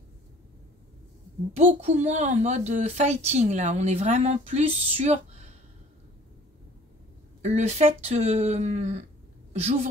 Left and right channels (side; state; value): both; normal; correlation 0.51